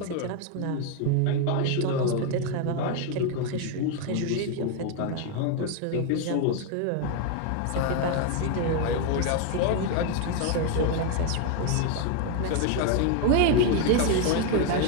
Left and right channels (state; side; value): different; both; correlation 0.01